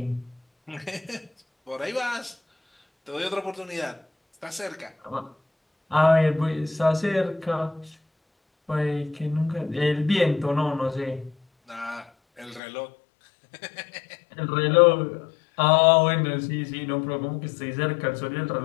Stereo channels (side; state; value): right; drops out; at 12.6 s